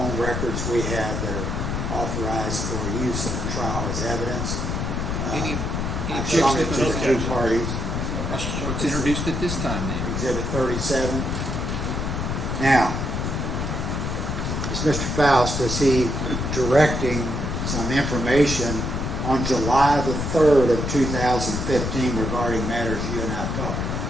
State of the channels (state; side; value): noise; left; rumble, 2 dB below the sound